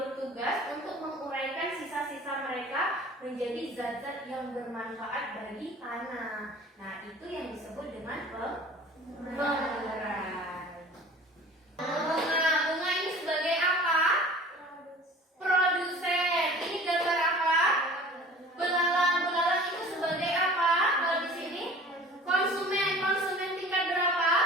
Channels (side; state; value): both; normal; correlation 0.44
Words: untuk menguraikan sisa-sisa mereka menjadi zat-zat yang bermanfaat bagi tanah. Nah, itu yang disebut dengan pengurai. Bunga ini sebagai apa? Produsen. Ini gambar apa? Belalang. Belalang itu sebagai apa? Kalau di sini konsumen. Konsumen tingkat berapa?